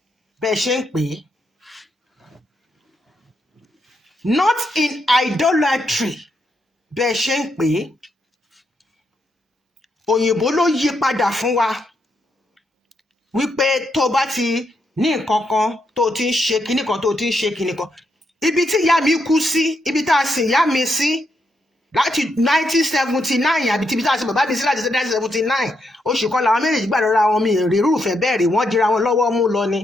Bẹ́ẹ̀ ṣe ń pè é. Not in idolatry. Bẹ́ẹ̀ ṣe ń pè é. Òyìnbó ló yí padà fún wa wípé tó bá ti ní nǹkan kan tó ti ń ṣe kinní kan, tó ti ń ṣe kinní kan. Ibi tí ìyá mi kú sí, ibi tá a sìn ìyá mi sí láti 1979, àbí tíbi tá a sìn bàbá mi sí láti 1979, oṣù kan làwọn méjèèjì gbà lọ́ra wọn, mi rí irúfẹ́ bẹ́ẹ̀ rí, wọ́n dira wọn lọ́wọ́ mú lọ ni.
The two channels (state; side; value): normal; both; correlation 0.80